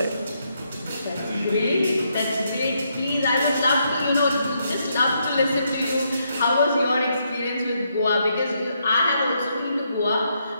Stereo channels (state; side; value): inverted; both; correlation -0.77